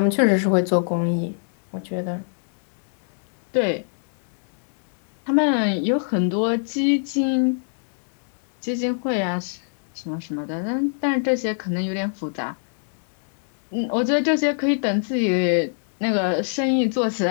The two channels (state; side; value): silent; right; digital silence